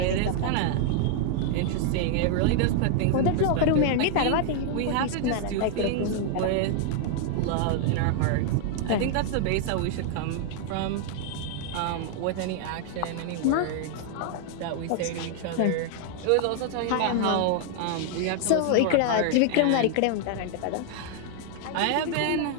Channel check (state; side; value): different; both; correlation 0.00